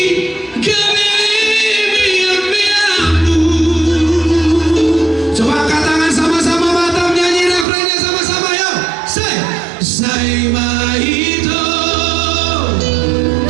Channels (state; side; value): drops out; left; at 7.7 s